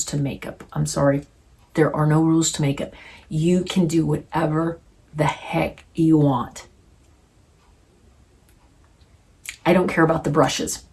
to makeup. I'm sorry. There are no rules to makeup. You can do whatever the heck you want. I don't care about the brushes.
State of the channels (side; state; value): both; identical; correlation 1.00